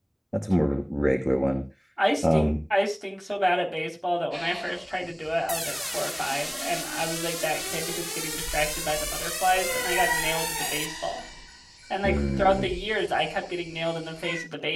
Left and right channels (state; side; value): identical; both; correlation 1.00